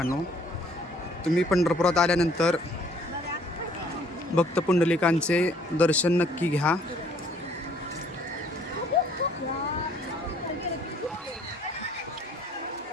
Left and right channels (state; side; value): normal; both; correlation 0.60